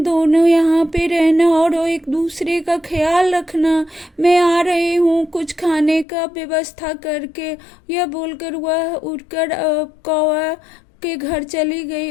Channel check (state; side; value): drops out; right; at 6.1 s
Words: दोनों यहाँ पे रहना और एक दूसरे का ख्याल रखना। मैं आ रही हूँ कुछ खाने का व्यवस्था करके। यह बोलकर वह उठकर कौवा के घर चली गई